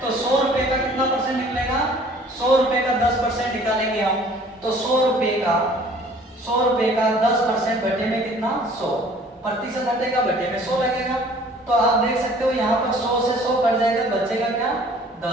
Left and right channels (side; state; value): both; normal; correlation 0.53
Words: तो 100 रुपए का कितना परसेंट निकलेगा? 100 रुपए का 10% निकालेंगे हम तो 100 रुपए का 10% बटे में कितना? 100। प्रतिशत हटेगा, बटे में 100 लगेगा। तो आप देख सकते हो यहाँ पर 100 से 100 कट जाएगा, बचेगा क्या?